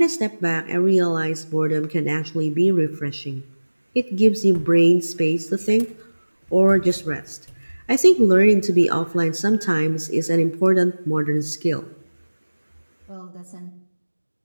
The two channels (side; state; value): both; inverted; correlation -1.00